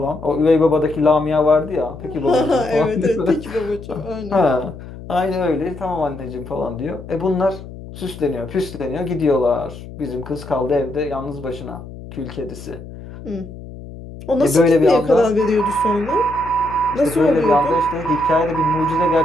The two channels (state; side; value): noise; left; hum, 14 dB below the sound